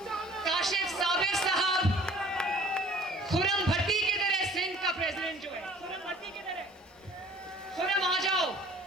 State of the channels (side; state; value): both; normal; correlation 0.51